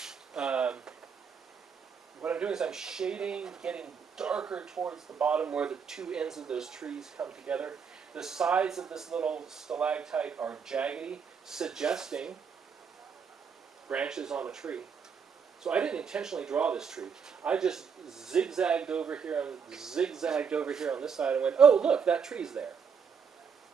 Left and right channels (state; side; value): quieter; left; 6.4 dB